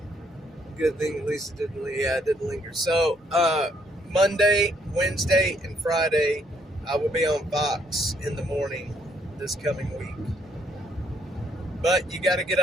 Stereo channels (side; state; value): both; normal; correlation 0.70